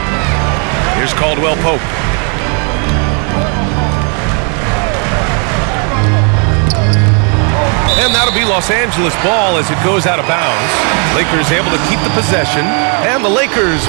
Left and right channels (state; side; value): quieter; left; 38.3 dB